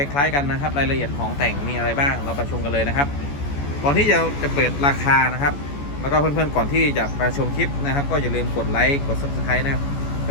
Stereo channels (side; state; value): right; late; 14 ms